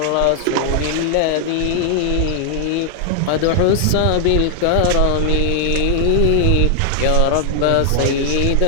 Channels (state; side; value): different; both; correlation 0.00